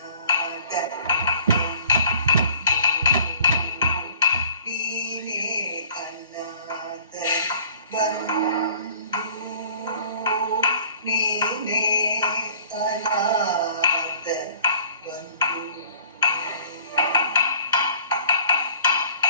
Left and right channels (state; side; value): inverted; both; correlation -0.51